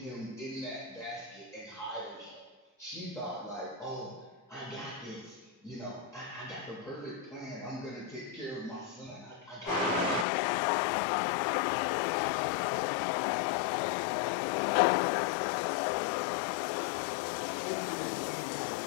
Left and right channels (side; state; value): right; drops out; at 10.2 s